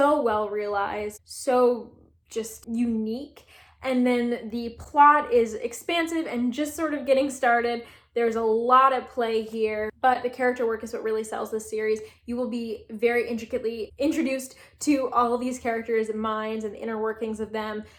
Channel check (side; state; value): both; identical; correlation 1.00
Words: well realized, so just unique. And then the plot is expansive and just sort of getting started. There's a lot at play here, but the character work is what really sells this series. You will be very intricately introduced to all of these characters' minds and the inner workings of them,